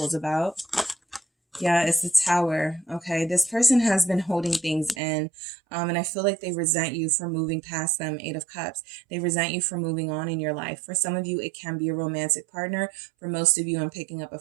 about? Yeah, it's the Tower. Okay, this person has been holding things in, and I feel like they resent you for moving past them. Eight of Cups. They resent you for moving on in your life. For some of you, it can be a romantic partner. For most of you, I'm picking up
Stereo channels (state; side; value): drops out; left; at 5.0 s